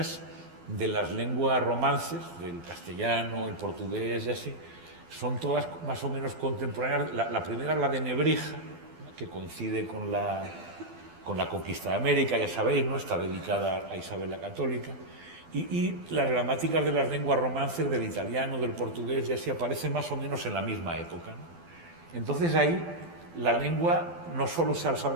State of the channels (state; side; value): late; left; 12 ms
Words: de las lenguas romances, del castellano, el portugués y así, son todas más o menos contemporáneas. La primera es la de Nebrija, que coincide con la conquista de América, ya sabéis, ¿no? Está dedicada a Isabel la Católica. Y las gramáticas de las lenguas romances, del italiano, del portugués, ya así aparecen más o menos en la misma época, ¿no? Entonces ahí la lengua no solo se